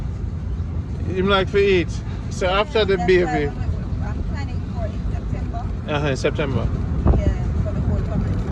Him like to eat. So after the baby. I'm planning for it. In September. Yeah, for the whole family.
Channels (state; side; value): identical; both; correlation 1.00